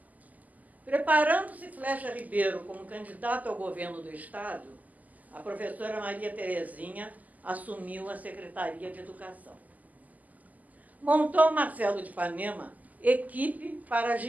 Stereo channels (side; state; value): left; late; 0.079 ms